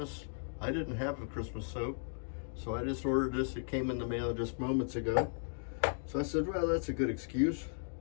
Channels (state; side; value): silent; right; digital silence